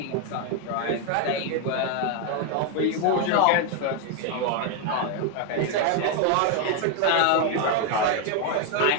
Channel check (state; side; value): different; both; correlation 0.01